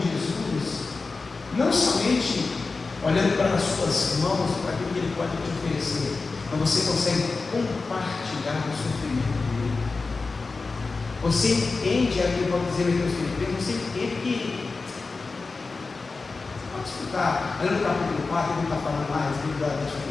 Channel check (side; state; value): right; quieter; 4.0 dB